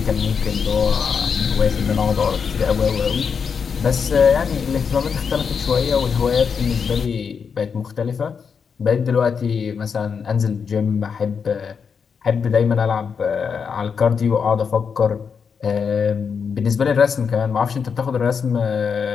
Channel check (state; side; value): quieter; right; 6.2 dB